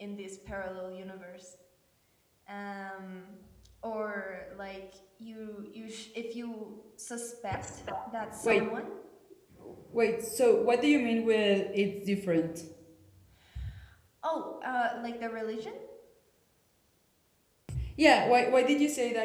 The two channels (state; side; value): identical; both; correlation 1.00